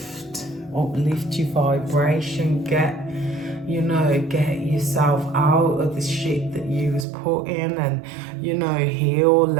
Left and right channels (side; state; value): left; drops out; at 7.1 s